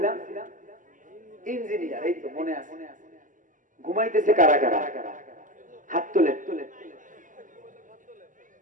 ইঞ্জিনিয়ার। এই তো মনে আছে। ঘুমাইতেছে কারা কারা? হাত তোলে।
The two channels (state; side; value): late; left; 0.38 ms